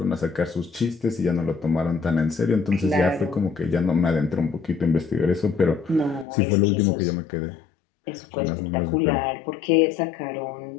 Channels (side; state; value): right; drops out; at 6.2 s